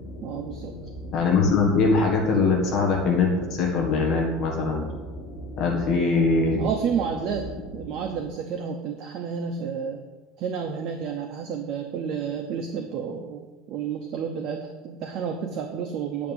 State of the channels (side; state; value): both; normal; correlation 0.35